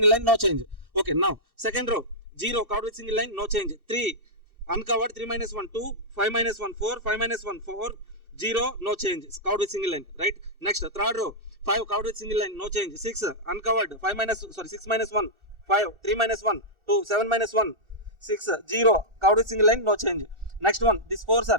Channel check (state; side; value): late; left; 1.4 ms